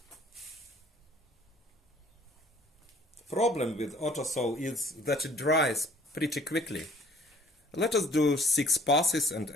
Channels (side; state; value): both; normal; correlation 0.55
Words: The problem with auto saw is that it dries pretty quickly. Let us do 6 passes and